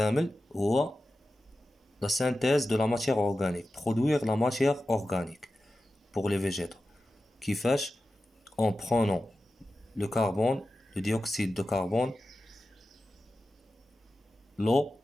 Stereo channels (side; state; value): both; normal; correlation 0.93